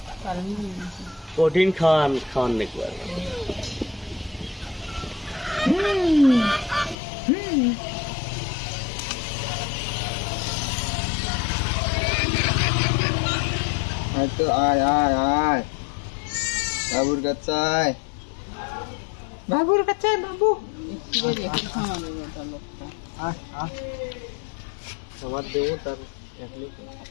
কঠিন খাওয়ার নাকি হয়তো আয় আয় আয় বাবুর কাছে বাবুর কাছে বাবু আয় আয় আমার দেবো তার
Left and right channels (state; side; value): drops out; right; at 7.0 s